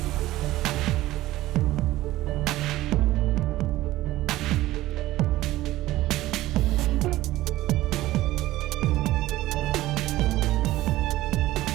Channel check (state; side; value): quieter; left; 16.4 dB